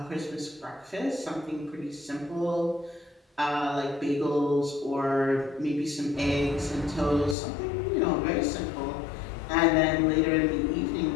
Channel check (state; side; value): drops out; right; at 7.4 s